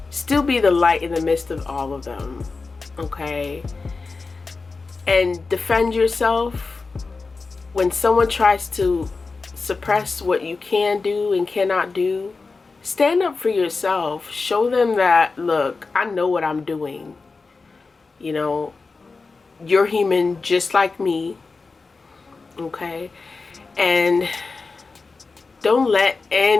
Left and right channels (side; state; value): right; quieter; 4.1 dB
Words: still be the light in the midst of all of them, okay? And defend yourself when someone tries to suppress what you can do and cannot do. Stand up for yourself. Show them that, look, I know what I'm doing. You're human just like me, okay? And don't let